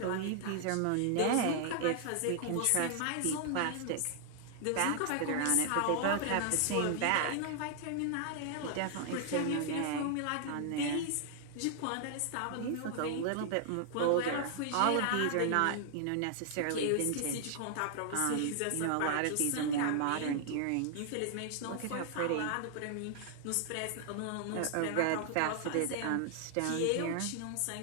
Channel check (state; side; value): different; both; correlation 0.00